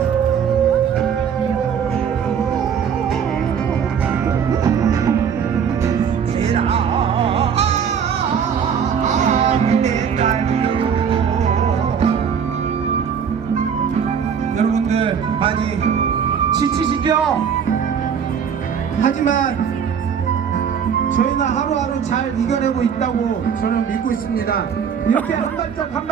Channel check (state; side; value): quieter; left; 7.4 dB